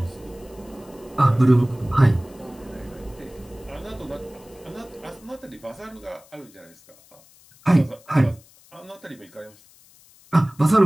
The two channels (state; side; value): noise; left; hiss, 26 dB below the sound